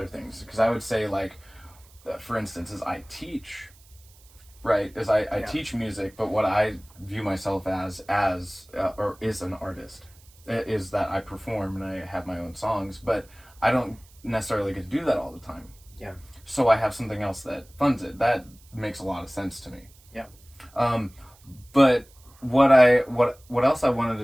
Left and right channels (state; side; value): noise; right; hiss, 27 dB below the sound